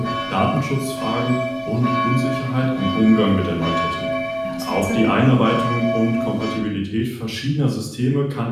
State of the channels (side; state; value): both; identical; correlation 1.00